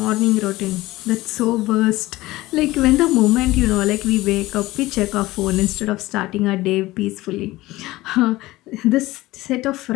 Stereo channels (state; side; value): quieter; right; 18.4 dB